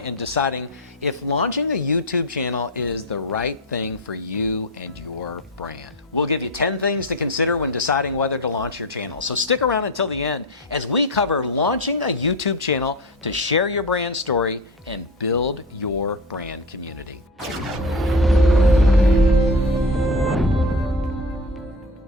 deciding if launching a YouTube channel is the right thing for you and your brand. We'll give you 10 things to consider when deciding whether to launch your channel. So stick around until the end as we cover launching a YouTube channel to share your brand story and build your brand community.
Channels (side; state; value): both; normal; correlation 0.22